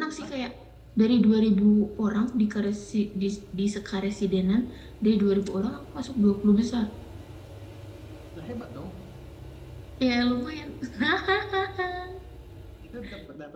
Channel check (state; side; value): identical; both; correlation 1.00